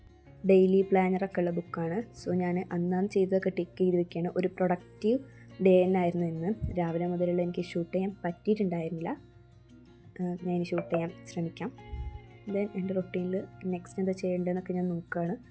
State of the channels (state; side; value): identical; both; correlation 1.00